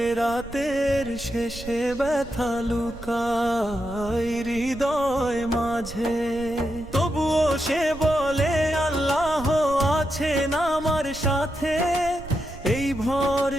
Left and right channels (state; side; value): noise; right; rumble, 15 dB below the sound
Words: রাতের শেষে ব্যথা লুকায় হৃদয় মাঝে। তবুও সে বলে আল্লাহ আছেন আমার সাথে, এই